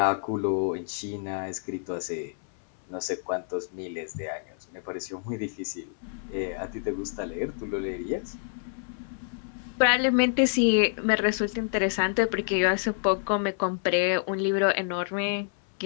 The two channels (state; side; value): silent; right; 59 dB below the other